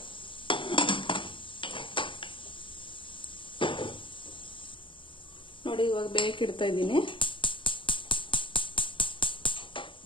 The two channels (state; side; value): late; right; 0.25 ms